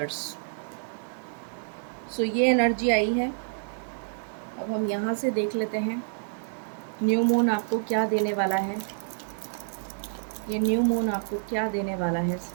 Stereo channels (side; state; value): left; silent; digital silence